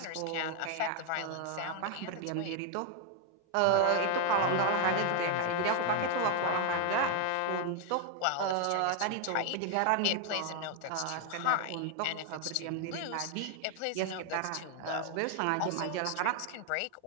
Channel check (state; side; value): different; both; correlation 0.00